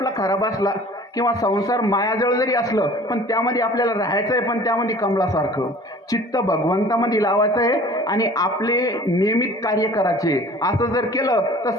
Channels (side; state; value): both; normal; correlation 0.47